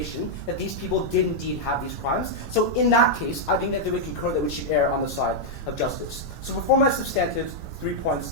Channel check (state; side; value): normal; both; correlation -0.04